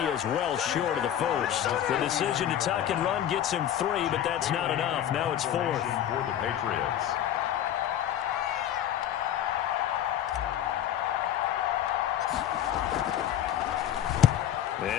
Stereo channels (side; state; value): right; quieter; 10.8 dB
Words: is well short of the first. The decision to tuck and run gets him 3, but that's not enough. Now it's 4th. For the Patriots.